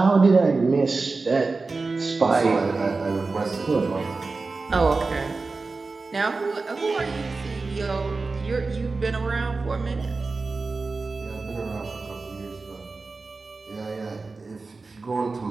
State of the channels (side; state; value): left; quieter; 3.9 dB